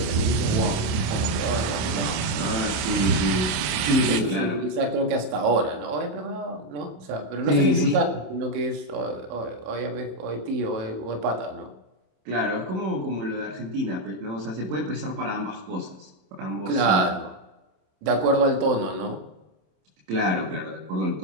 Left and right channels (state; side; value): late; left; 27 ms